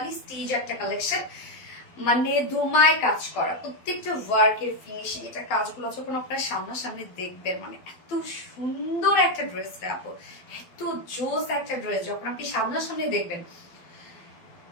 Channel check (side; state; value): right; late; 12 ms